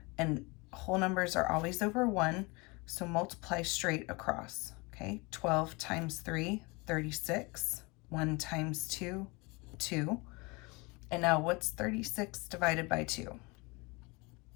and whole numbers are always over 1, so multiply straight across. Okay, 12 times 3, 36. 1 times 2, 2. And now what's 36 divided by 2?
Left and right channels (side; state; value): right; quieter; 26.7 dB